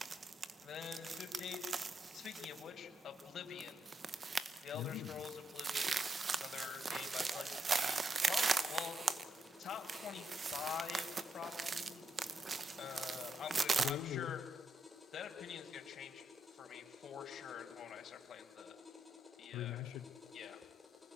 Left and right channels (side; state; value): both; normal; correlation 0.81